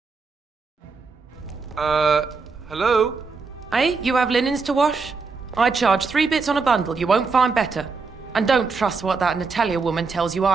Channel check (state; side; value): quieter; left; 4.6 dB